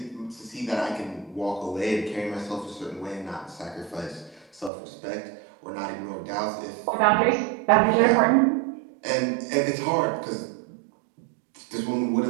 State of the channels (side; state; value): left; drops out; at 4.7 s